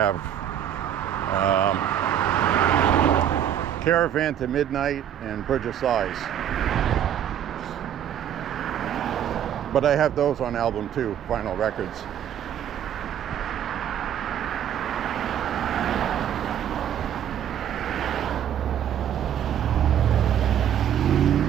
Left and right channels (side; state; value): left; quieter; 10.0 dB